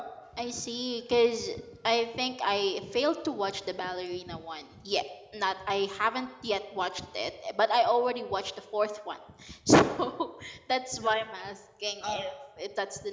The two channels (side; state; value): both; identical; correlation 1.00